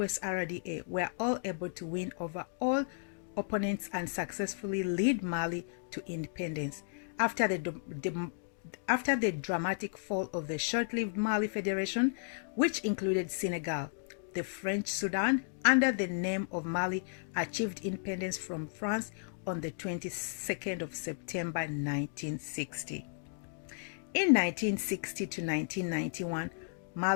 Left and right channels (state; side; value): silent; right; digital silence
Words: RDA were all able to win over all opponents and successfully lead Mali to independence. After the dramatic fall of the short-lived Mali Federation, which included Senegal, the French Sudan, under the name of Mali, achieved independence from France on the 22nd of September 1960. In 1960 to 1991,